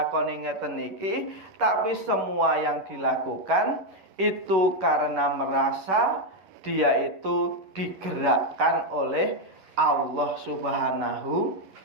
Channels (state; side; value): late; left; 11 ms